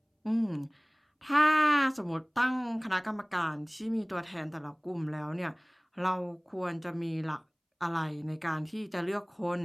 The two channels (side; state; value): both; identical; correlation 1.00